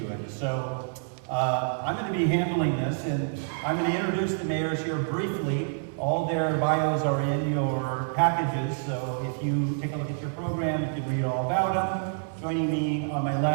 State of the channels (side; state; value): left; silent; 60 dB below the other